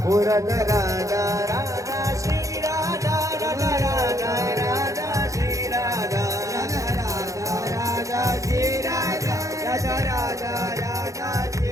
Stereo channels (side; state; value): left; late; 0.16 ms